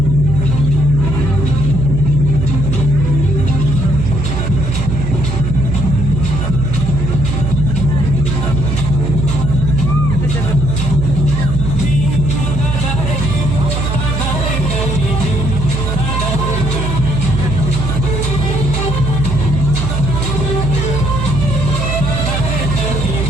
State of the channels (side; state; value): right; noise; hum, 2 dB below the sound